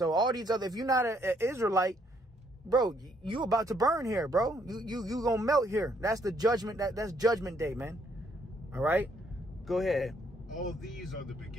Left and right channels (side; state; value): both; normal; correlation 0.69